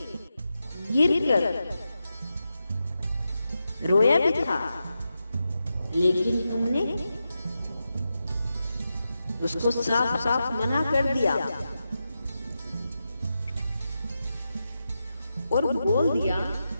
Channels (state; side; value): inverted; both; correlation -0.89